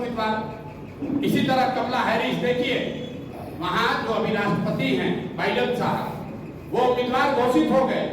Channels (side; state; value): both; identical; correlation 1.00